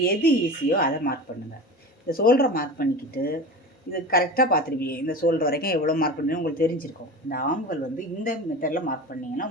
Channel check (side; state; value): both; normal; correlation 0.31